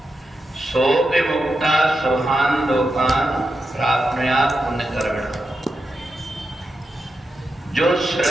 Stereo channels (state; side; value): normal; both; correlation 0.87